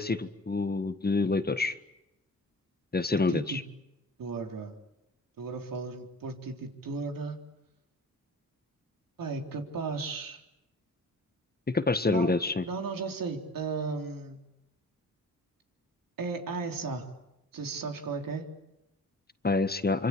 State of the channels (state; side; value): normal; both; correlation 0.43